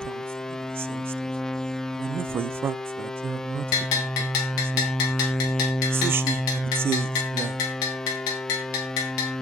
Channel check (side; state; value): both; normal; correlation 0.52